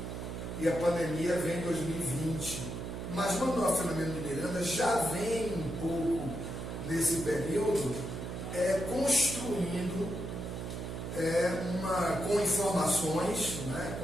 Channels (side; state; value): right; noise; hum, 6 dB below the sound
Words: e a pandemia vem em 2020. Mas Manuel Filomeno de Miranda já vem um pouco nesse período construindo com informações,